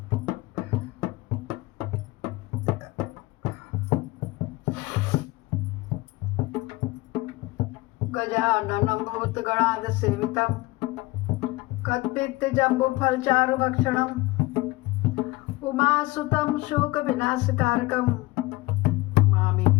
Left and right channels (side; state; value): right; quieter; 20.7 dB